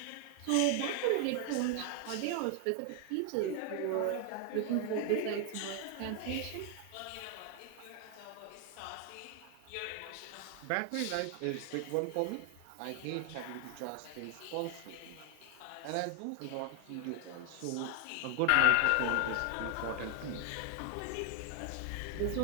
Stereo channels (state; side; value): different; both; correlation 0.00